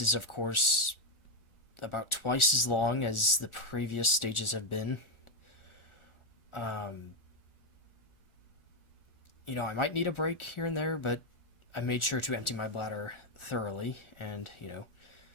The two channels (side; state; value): right; late; 1.4 ms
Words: is, of course, about twice as long as the previous stages have been. You know, I might need a break here and there, but I made sure to empty my bladder thoroughly, and, you know,